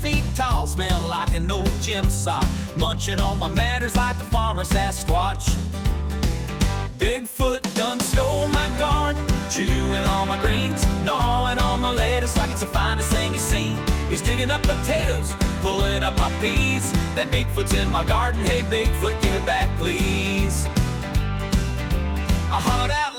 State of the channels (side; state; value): both; identical; correlation 1.00